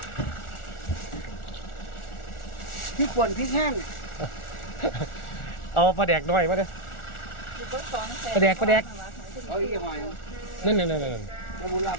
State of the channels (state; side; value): late; right; 1.4 ms